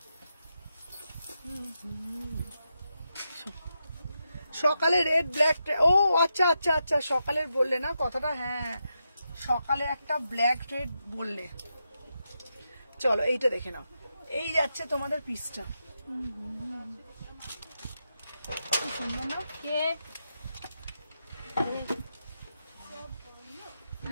সকালে রেড ব্ল্যাক, ও আচ্ছা আচ্ছা আচ্ছা, সকালের বললে না কথাটা, হ্যাঁ সকালে একটা ব্ল্যাক রেড বললে। চলো এইটা দেখে নাও, এই যাচ্ছে তোমাদের পিসটা, কি সুন্দর না? কে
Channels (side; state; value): both; inverted; correlation -0.86